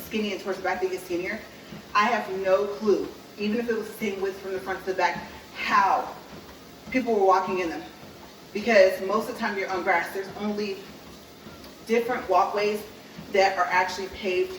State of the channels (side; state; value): both; identical; correlation 1.00